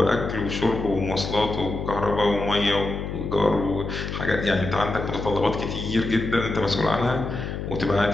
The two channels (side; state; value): left; noise; hum, 5 dB below the sound